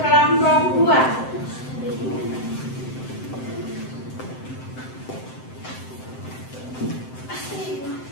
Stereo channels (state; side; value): late; right; 7.8 ms